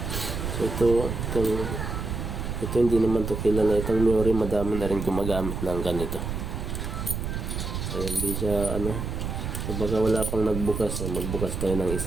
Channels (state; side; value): noise; right; rumble, 4 dB below the sound